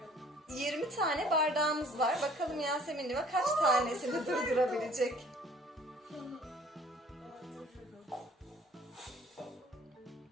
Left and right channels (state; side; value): normal; both; correlation 0.54